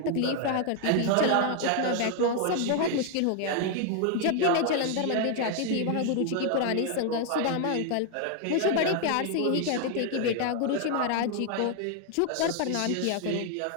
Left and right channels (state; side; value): different; both; correlation 0.01